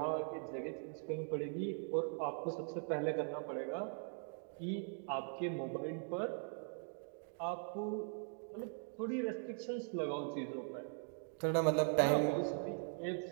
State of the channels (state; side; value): silent; left; 50 dB below the other